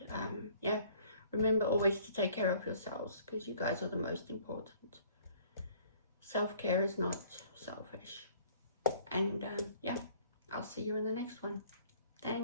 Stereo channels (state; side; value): inverted; both; correlation -0.55